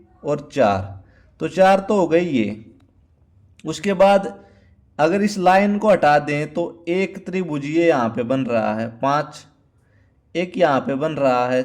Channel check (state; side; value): identical; both; correlation 1.00